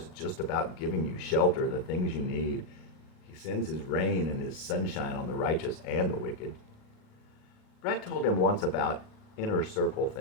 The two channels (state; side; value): late; right; 38 ms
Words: just about giving you shelter, the things you need. He sends his rain and his sunshine on the righteous and the wicked." Brett told him once about inner circle